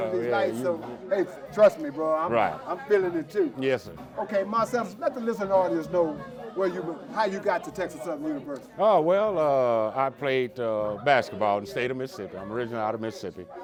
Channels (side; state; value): both; identical; correlation 1.00